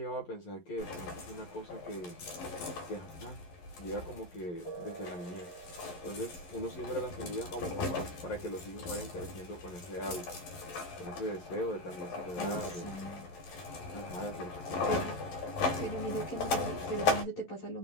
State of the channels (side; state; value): right; late; 11 ms